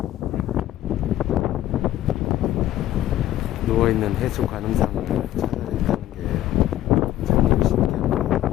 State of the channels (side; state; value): right; quieter; 13.4 dB